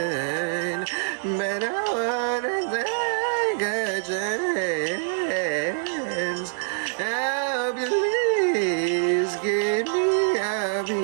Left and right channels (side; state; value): left; silent; digital silence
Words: but I wanna take a chance. Oh, please give me a